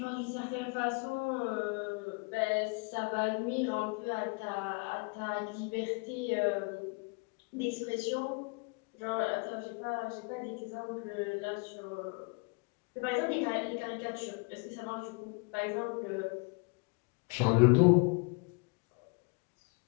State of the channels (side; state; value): right; quieter; 31.7 dB